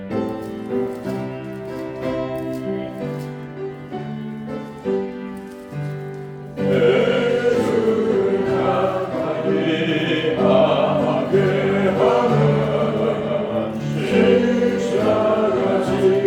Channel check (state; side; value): identical; both; correlation 1.00